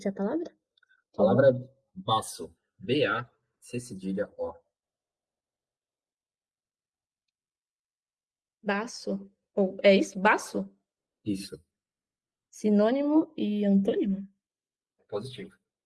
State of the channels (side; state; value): both; identical; correlation 1.00